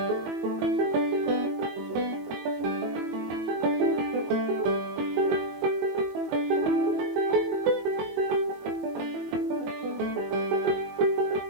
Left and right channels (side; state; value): left; late; 21 ms